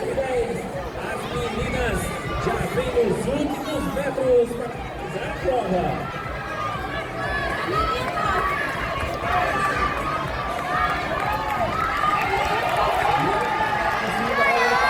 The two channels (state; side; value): identical; both; correlation 1.00